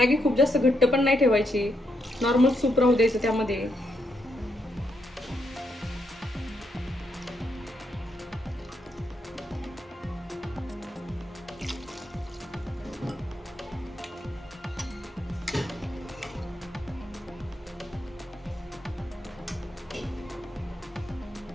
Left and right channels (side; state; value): both; normal; correlation 0.79